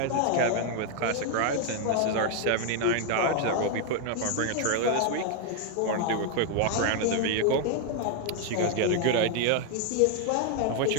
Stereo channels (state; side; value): different; both; correlation 0.00